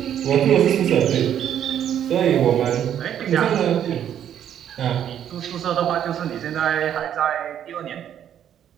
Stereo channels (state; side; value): quieter; left; 9.9 dB